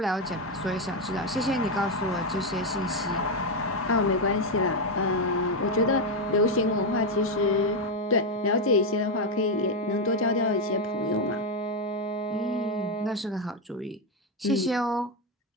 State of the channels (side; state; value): both; normal; correlation 0.06